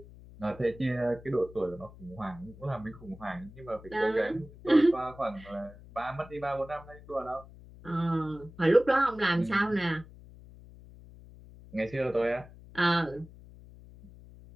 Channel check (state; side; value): noise; left; hum, 19 dB below the sound